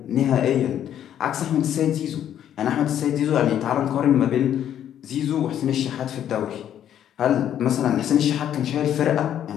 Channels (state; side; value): quieter; right; 10.3 dB